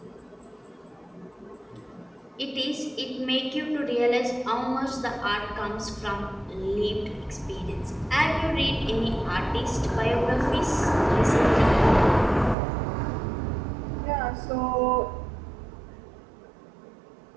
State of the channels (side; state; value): left; drops out; at 12.6 s